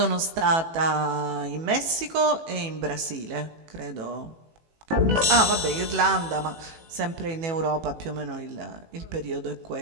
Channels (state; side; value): late; left; 18 ms